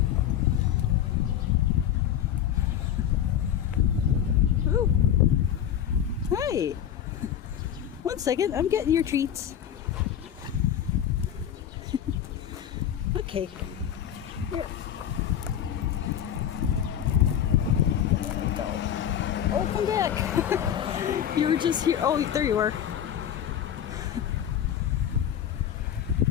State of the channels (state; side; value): quieter; right; 9.9 dB